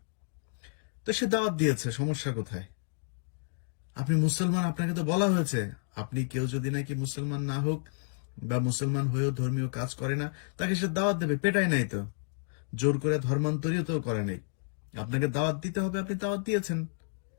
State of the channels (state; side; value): silent; right; digital silence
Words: তো সে দাওয়াত দিয়েছে, সমস্যা কোথায়? আপনি মুসলমান, আপনাকে তো বলা হয়েছে, আপনি কেউ যদি নাকি মুসলমান না হোক বা মুসলমান হয়েও ধর্মীয় কাজ করে না, তাকে সে দাওয়াত দেবে, পেটায় নাই তো, জোর করে ধর্মান্তরিত তো করে নাই। আপনাকে দাওয়াত দিতে হবে, আপনি দাওয়াত দিয়েছেন,